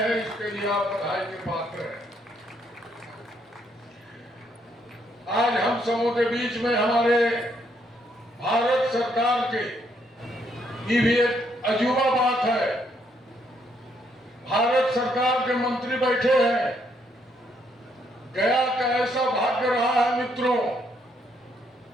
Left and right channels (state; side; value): normal; both; correlation 0.72